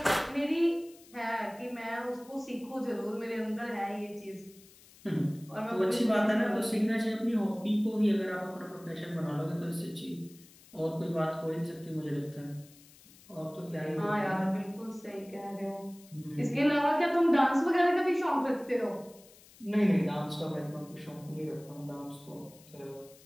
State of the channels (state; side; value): noise; left; hiss, 24 dB below the sound